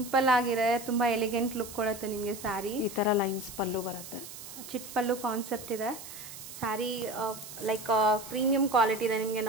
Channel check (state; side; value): noise; right; hiss, 13 dB below the sound